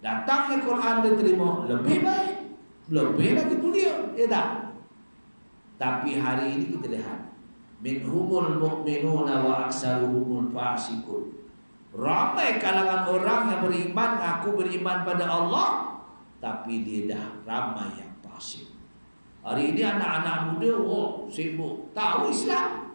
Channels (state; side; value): inverted; both; correlation -1.00